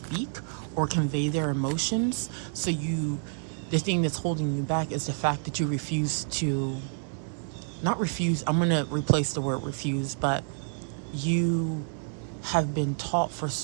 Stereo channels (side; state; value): left; silent; digital silence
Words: or convey their emotions. So the thing that's holding you back is the fact that you refuse to, not refuse, I'm going to replace the word refuse, but you have been taught for